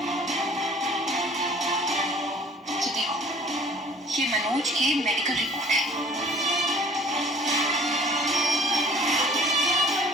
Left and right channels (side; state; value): both; normal; correlation 0.51